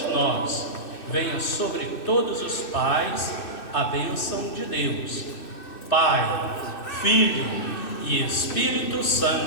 nós, venha sobre todos os pais a bênção de Deus, Pai, Filho e Espírito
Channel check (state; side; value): late; right; 2.6 ms